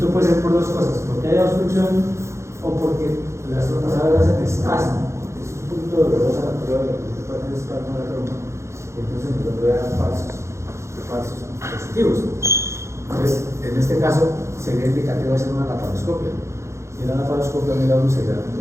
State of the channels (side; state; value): left; late; 0.14 ms